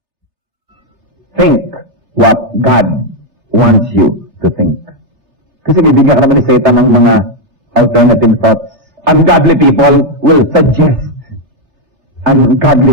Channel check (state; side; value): late; left; 3.3 ms